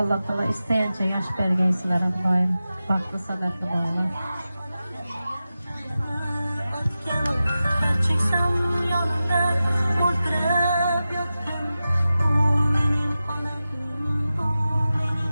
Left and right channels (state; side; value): inverted; both; correlation -0.94